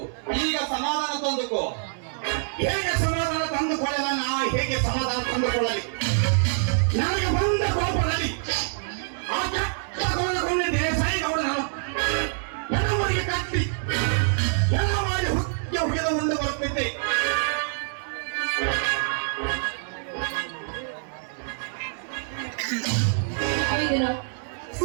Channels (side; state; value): left; silent; 61 dB below the other